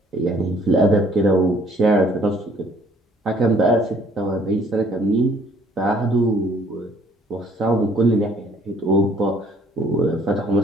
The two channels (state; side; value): normal; both; correlation 0.60